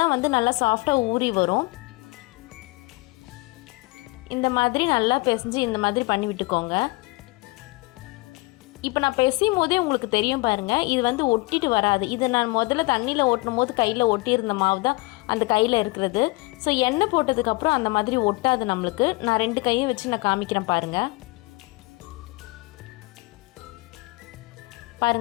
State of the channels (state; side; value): quieter; right; 23.9 dB